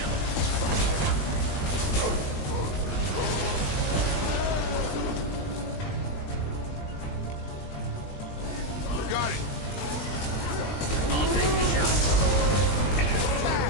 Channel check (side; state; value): right; late; 20 ms